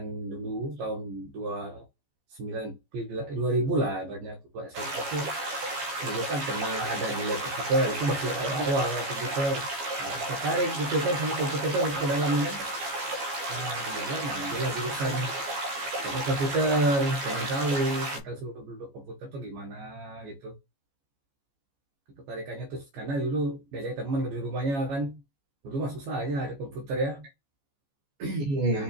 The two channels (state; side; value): late; left; 14 ms